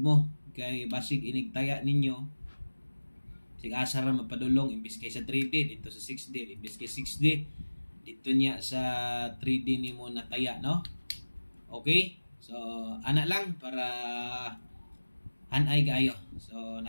mo kay basig inigtaya ninyo. Sig asa ra mapadulong imbis kay sa 3D dito sa 6D, imbis kay 6D dito niya sa 3D nimo nataya, no? Okay? So ana lang para hanay kayo. So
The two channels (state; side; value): inverted; both; correlation -1.00